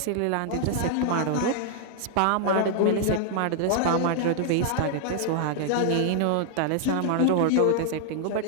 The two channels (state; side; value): different; both; correlation 0.00